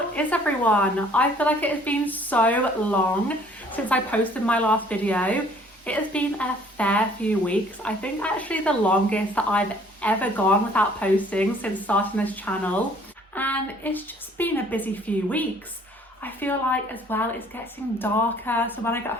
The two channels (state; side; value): normal; both; correlation 0.57